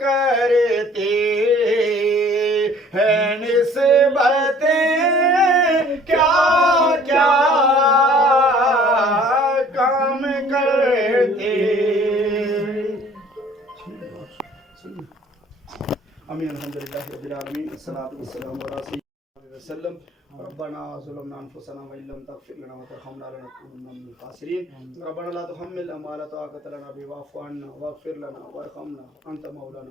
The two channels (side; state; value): both; normal; correlation 0.53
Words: ہیں نسبتیں کیا کیا کام کرتے امین الحمدللہ رب العالمین الصلاۃ والسلام علی سیدنا وسلم ربنا ظلمنا انفسنا وان لم تغفر لنا وترحمنا لنكونن من الخاسرين ربنا لا تحملنا ما لا طاقة لنا به واعف عنا واغفر لنا وارحمنا انت